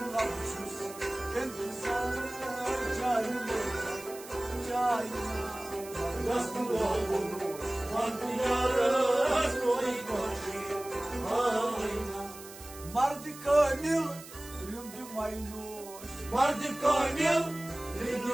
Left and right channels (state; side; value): noise; right; hiss, 16 dB below the sound